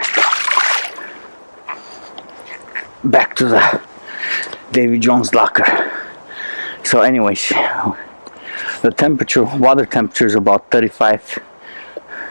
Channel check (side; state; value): both; inverted; correlation -1.00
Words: Back to the Davy Jones locker. So anyways, the temperature, water temperature is about 35,